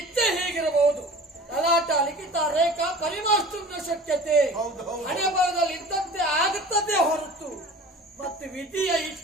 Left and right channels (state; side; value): normal; both; correlation 0.41